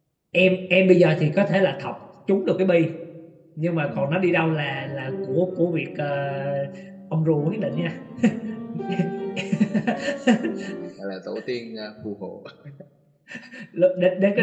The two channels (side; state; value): both; identical; correlation 1.00